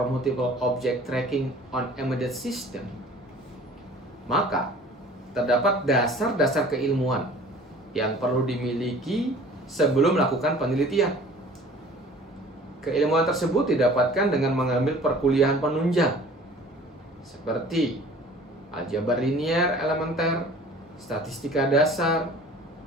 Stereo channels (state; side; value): normal; both; correlation 0.48